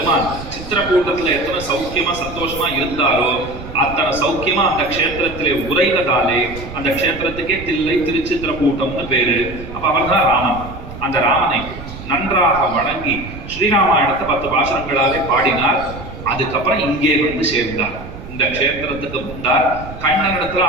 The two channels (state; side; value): noise; right; rumble, 12 dB below the sound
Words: சித்திரக்கூட்டத்துல எத்தனை சௌக்கியமா சந்தோஷமா இருந்தாரோ அத்தனை சௌக்கியமா அந்த க்ஷேத்திரத்திலே உரைவதாலே அந்த க்ஷேத்திரத்துக்கே தில்லை திருச்சித்திரகூட்டம்னு பேரு. அப்ப அவர் தான் ராமன். அந்த ராமனை நன்றாக வணங்கி ஸ்ரீராமாயணத்தை 10 பாசுரங்களாலே பாடினார். அதுக்கப்புறம் இங்கே வந்து சேர்ந்தார். இந்த க்ஷேத்திரத்துக்கு வந்தார். கண்ணனிடத்துல